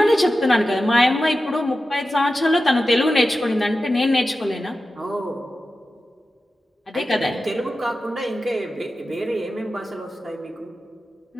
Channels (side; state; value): both; normal; correlation 0.93